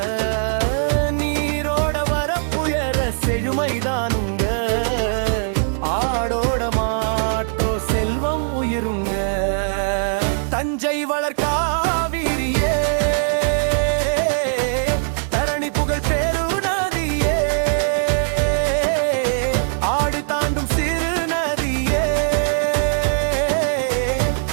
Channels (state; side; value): silent; left; 65 dB below the other